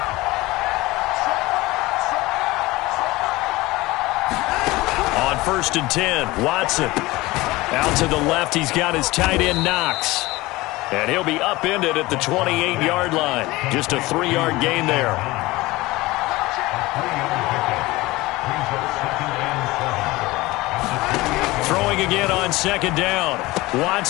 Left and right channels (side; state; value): right; quieter; 20.3 dB